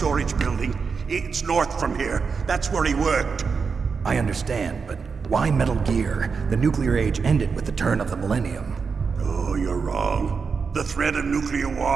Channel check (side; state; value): left; quieter; 5.4 dB